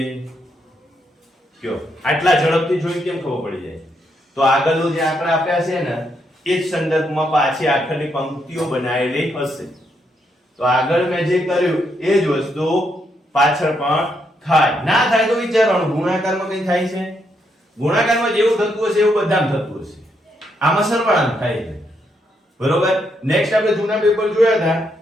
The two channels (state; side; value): normal; both; correlation 0.78